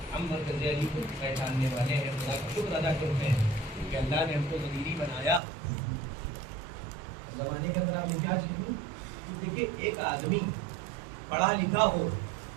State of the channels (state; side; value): drops out; left; at 5.4 s